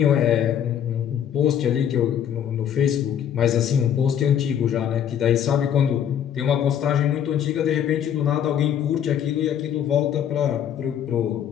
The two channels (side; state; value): right; quieter; 9.3 dB